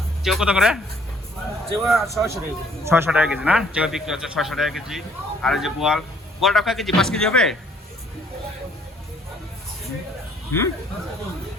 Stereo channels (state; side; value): normal; both; correlation 0.62